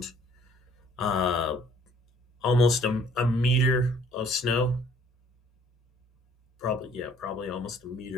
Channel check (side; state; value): both; normal; correlation 0.58